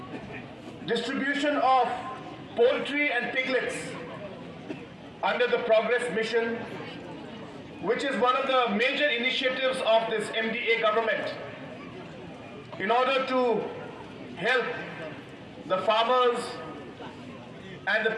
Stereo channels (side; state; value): both; identical; correlation 1.00